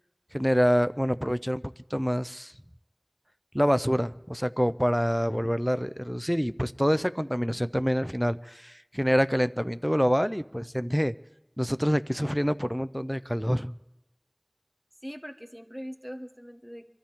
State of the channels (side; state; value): both; identical; correlation 1.00